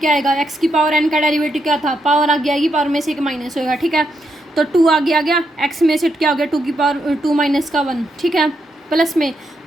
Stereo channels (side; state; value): both; normal; correlation 0.81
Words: आएगा, एक्स की पावर एन का डेरिवेटिव क्या था, पावर आगे आएगी, पावर में से एक माइनस होगा, ठीक है। तो 2 आगे आ गया, एक्स में से क्या हो गया, 2 की पावर 2 माइनस का 1, ठीक है। प्लस में